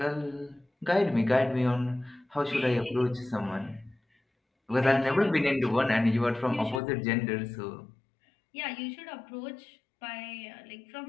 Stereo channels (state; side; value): drops out; right; at 6.8 s